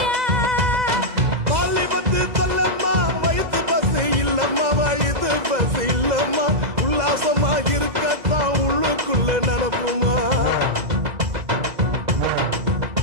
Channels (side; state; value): left; late; 2.0 ms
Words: பஸ் இல்லம்மா உல்லாசமா இருக்கத்தான் உள்ளுக்குள்ள நடப்புமா